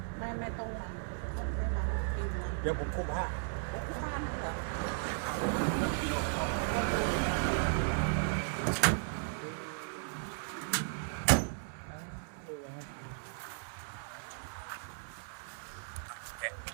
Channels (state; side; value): silent; left; 54 dB below the other